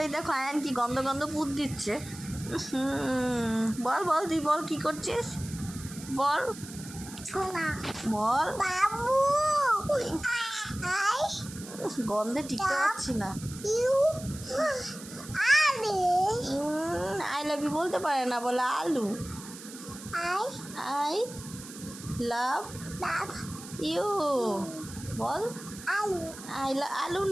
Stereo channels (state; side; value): noise; right; hiss, 14 dB below the sound